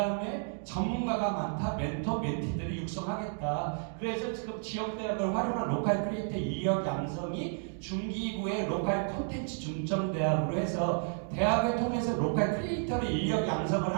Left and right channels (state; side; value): silent; left; 56 dB below the other